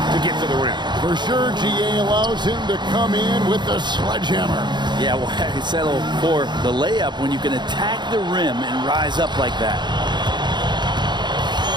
to get to the rim. For sure, GA allows him to come in with the sledgehammer. Yeah, well, I settle for the layup when you can attack the rim and rise up like that.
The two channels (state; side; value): late; left; 0.21 ms